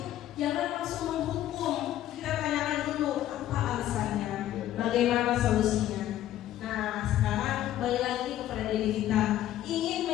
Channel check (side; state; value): right; quieter; 12.8 dB